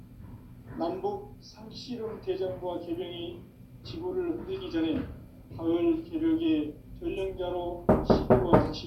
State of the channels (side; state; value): both; identical; correlation 1.00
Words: 남북 상씨름 대전과 개병이 지구를 흔들기 전에 가을 개벽의 전령자로 시대와